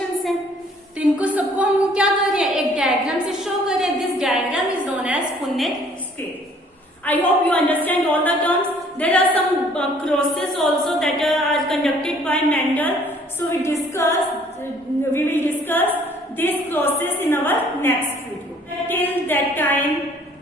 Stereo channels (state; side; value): normal; both; correlation 0.58